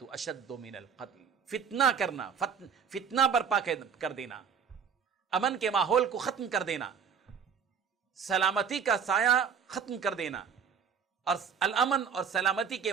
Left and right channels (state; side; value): quieter; left; 6.8 dB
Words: أَشَدُّ مِنَ الْقَتْلِ، فتنہ کرنا، فتنہ برپا کر دینا، امن کے ماحول کو ختم کر دینا، سلامتی کا سایہ ختم کر دینا، اور الامن اور سلامتی کے